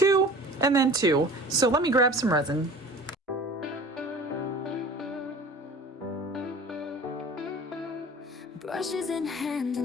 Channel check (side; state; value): both; normal; correlation 0.42